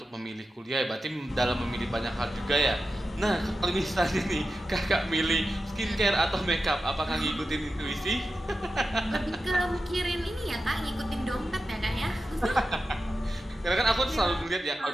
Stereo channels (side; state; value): both; normal; correlation 0.91